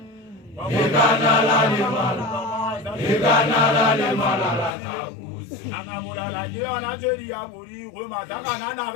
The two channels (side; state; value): right; drops out; at 4.8 s